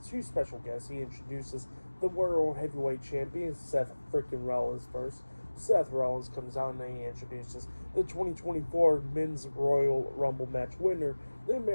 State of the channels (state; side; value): inverted; both; correlation -1.00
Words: special guests. He introduces the World Heavyweight Champion, Seth freaking Rollins first. Seth Rollins comes out and then he introduces the 2024 Men's Royal Rumble match winner, the